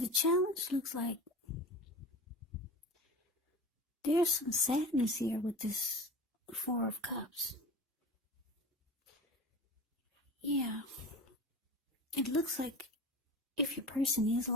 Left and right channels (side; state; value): both; normal; correlation 0.33